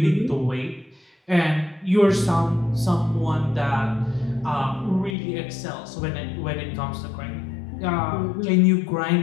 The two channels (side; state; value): right; drops out; at 5.2 s